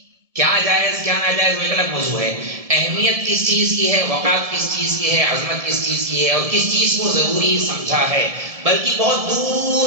کیا جائز کیا ناجائز وہ ایک الگ موضوع ہے. اہمیت کس چیز کی ہے، وقات کس چیز کی ہے، عظمت کس چیز کی ہے، اور کس چیز کو ضروری سمجھا ہے. بلکہ بہت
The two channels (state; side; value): late; left; 1.7 ms